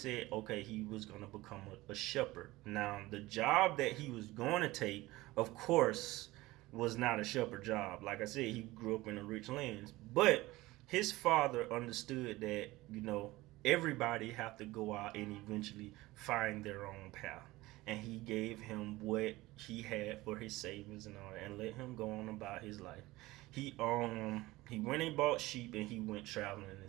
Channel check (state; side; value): quieter; left; 19.2 dB